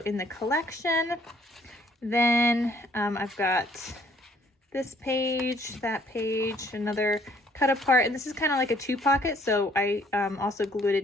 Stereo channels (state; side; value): normal; both; correlation 0.62